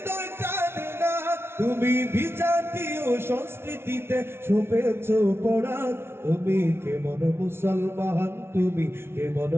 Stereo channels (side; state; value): left; late; 0.12 ms